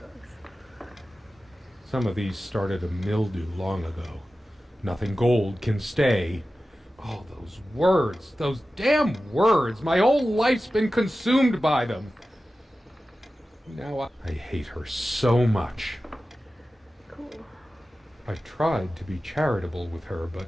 Some of these started a mildew long ago. Nothing gold can stay. Oh, those words, those damn words. My whole life's been consumed by them. Now I hate her so much. Cool. I tried to be charitable with her, but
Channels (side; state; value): both; normal; correlation 0.94